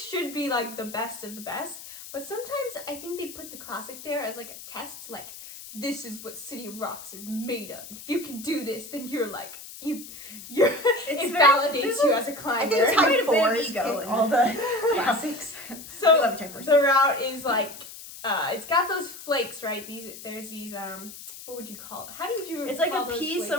should be like the best of the best, but sometimes I think they put the classic there as like a test, like this is what City of Rocks is made of. If you can do this, then you're like it validates you as a climber. I think it's Type 4's ego all the classics. So the route is like it's got those flakes, right? There's these what would you call it? How did you It's like call a those piece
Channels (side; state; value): left; noise; hiss, 14 dB below the sound